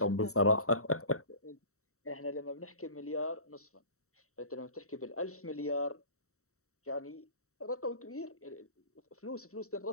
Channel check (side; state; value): right; late; 0.64 ms